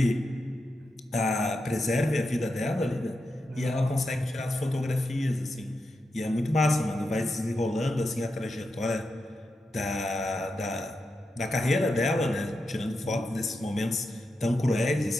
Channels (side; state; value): both; normal; correlation 0.87